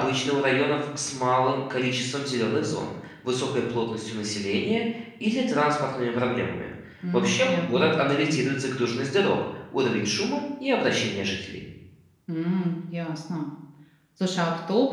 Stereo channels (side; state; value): both; identical; correlation 1.00